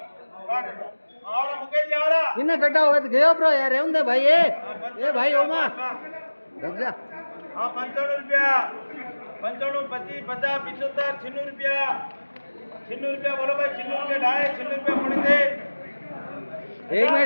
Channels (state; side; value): inverted; both; correlation -1.00